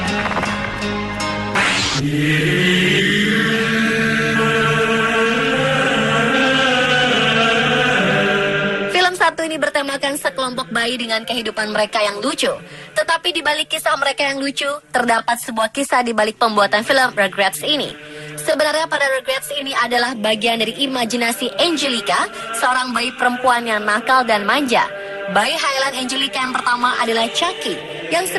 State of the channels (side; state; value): both; identical; correlation 1.00